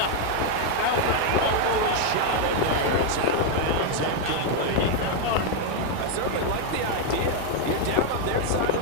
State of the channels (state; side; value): different; both; correlation 0.01